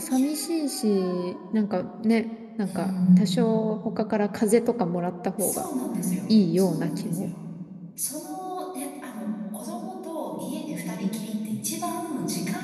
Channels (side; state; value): both; identical; correlation 1.00